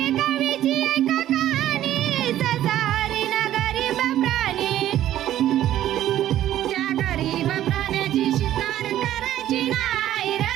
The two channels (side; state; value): left; quieter; 12.6 dB